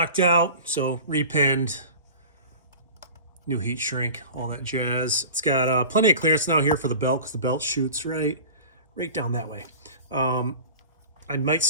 out, so repinned, new heat shrink, all that jazz. It's got plenty of clearance now here for the belt because the belt shoots right down that way. I might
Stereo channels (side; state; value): both; inverted; correlation -0.37